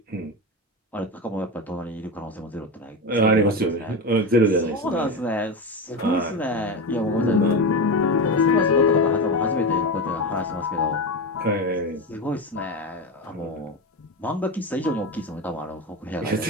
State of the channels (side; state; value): both; normal; correlation 0.19